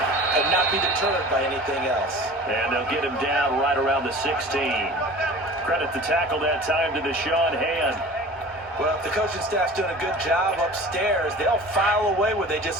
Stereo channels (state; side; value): normal; both; correlation 0.41